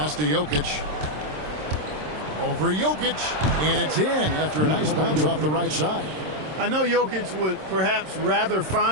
to Jokic. Over Jokic. And it's in after a nice bounce off the right side. I know Jokic would perhaps rather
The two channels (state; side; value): late; left; 26 ms